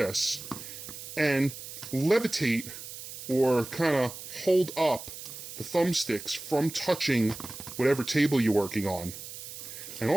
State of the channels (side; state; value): right; noise; hiss, 11 dB below the sound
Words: and levitate or kind of hold up the thumbsticks from touching whatever table you're working on. And